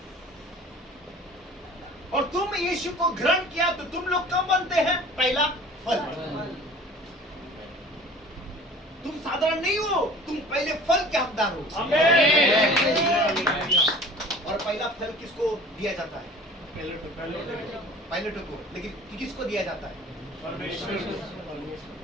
और तुम यीशु को ग्रहण किया तो तुम लोग कब बनते हैं? पहला फल। तुम साधारण नहीं हो, तुम पहले फल के हकदार हो। आमीन। और पहला फल किसको दिया जाता है? पायलटों को। लेकिन किसको दिया जाता है? परमेश्वर।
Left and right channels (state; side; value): normal; both; correlation 0.45